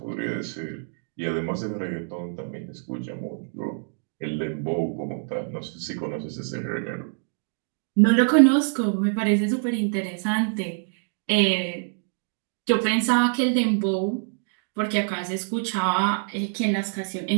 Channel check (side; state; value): left; silent; 61 dB below the other